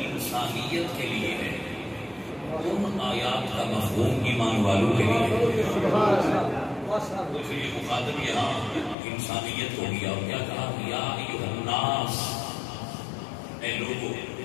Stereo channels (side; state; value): right; drops out; at 9.0 s